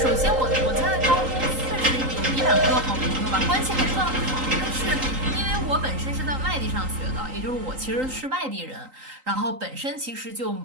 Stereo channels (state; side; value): late; left; 3.8 ms